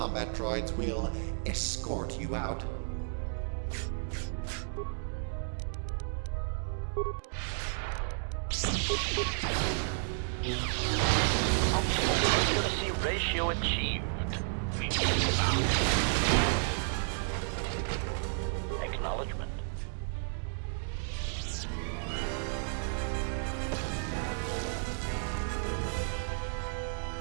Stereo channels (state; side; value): silent; left; digital silence